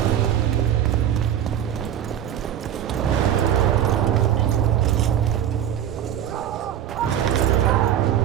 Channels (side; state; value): left; quieter; 10.4 dB